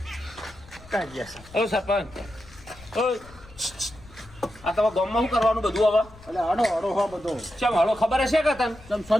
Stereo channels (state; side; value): noise; left; rumble, 22 dB below the sound